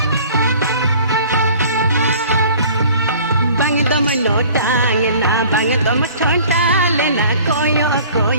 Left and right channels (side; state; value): both; inverted; correlation -0.48